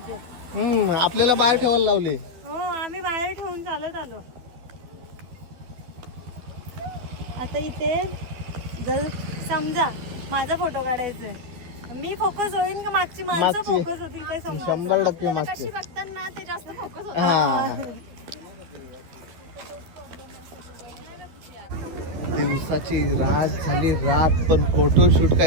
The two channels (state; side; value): late; left; 12 ms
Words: आपल्याला बाहेर ठेवायला लावले. हो, आम्ही बाहेर ठेवून चालत आलो. आता इथे जर समजा माझा फोटो काढायचा आहे, मी फोकस होईन का मागची माणसं मागची. फोकस होतील काय समजा. 100% मागचे. बघताना ते जास्त फोकस होत. हा. दिवसाची रात झाली, रात पण फोटोशूट